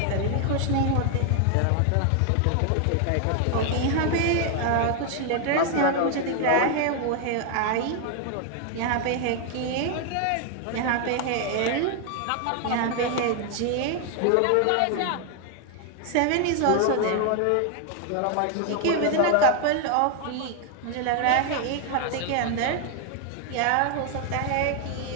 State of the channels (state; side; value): different; both; correlation 0.00